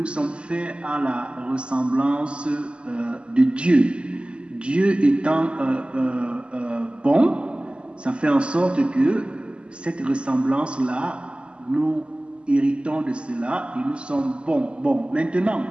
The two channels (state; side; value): late; left; 0.054 ms